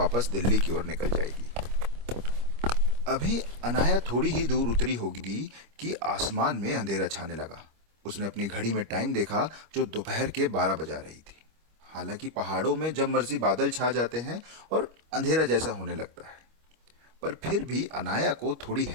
दिल्ली की ओर निकल जाएगी। अभी अनाया थोड़ी ही दूर उतरी होगी कि आसमान में अंधेरा छाने लगा। उसने अपनी घड़ी में टाइम देखा जो दोपहर के 12 बजा रही थी। हालांकि पहाड़ों में जब मर्जी बादल छा जाते हैं और अंधेरा जैसा होने लगता है, पर फिर भी अनाया को थोड़ी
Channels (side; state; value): left; late; 25 ms